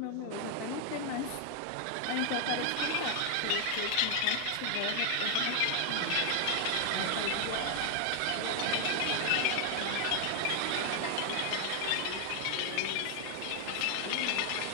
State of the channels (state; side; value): different; both; correlation 0.00